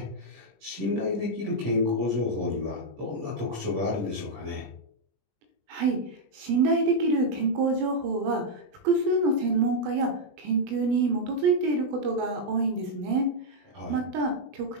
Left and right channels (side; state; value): left; late; 20 ms